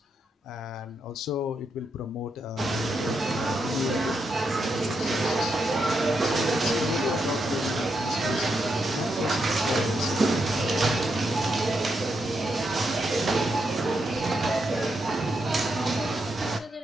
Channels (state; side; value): normal; both; correlation 0.82